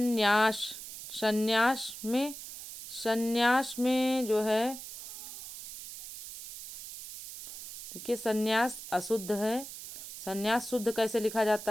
संन्यास में जो है, देखिए संन्यास अशुद्ध है। संन्यास शुद्ध कैसे लिखा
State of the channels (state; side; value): noise; right; hiss, 11 dB below the sound